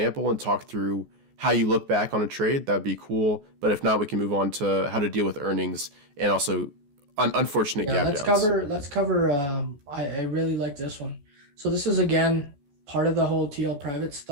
and talk through how you look back on a trade, that'd be cool. But if not, we can move on to how to deal with earnings and also unfortunate gap downs. Let's cover. I really like this one. So this is again part of the whole TL private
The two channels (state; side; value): late; left; 14 ms